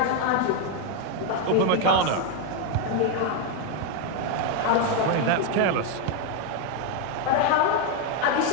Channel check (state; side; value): different; both; correlation 0.01